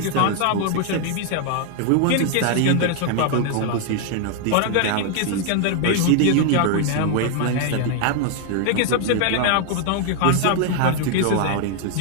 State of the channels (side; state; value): both; different; correlation 0.00